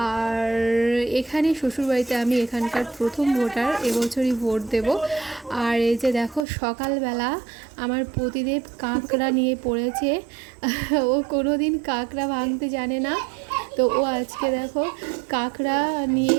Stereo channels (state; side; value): drops out; left; at 6.5 s